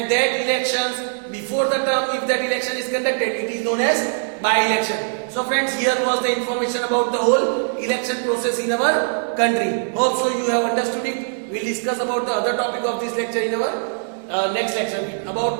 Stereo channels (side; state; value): left; silent; 65 dB below the other